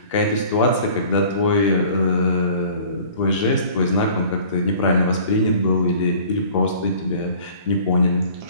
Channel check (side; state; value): both; inverted; correlation -0.48